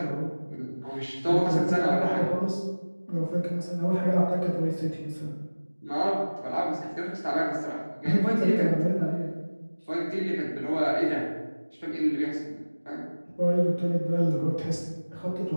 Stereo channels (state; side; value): inverted; both; correlation -1.00